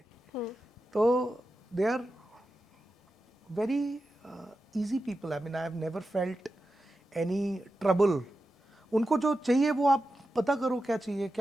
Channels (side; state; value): both; normal; correlation 0.91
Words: तो they are very easy people. I mean I have never felt any trouble. उनको जो चाहिए वो आप पता करो क्या चाहिए,